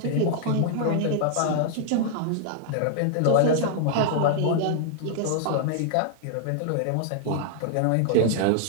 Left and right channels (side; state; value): both; different; correlation 0.00